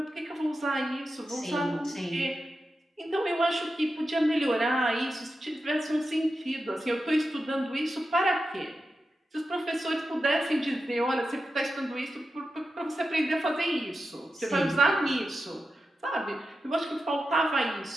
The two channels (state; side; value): normal; both; correlation 0.91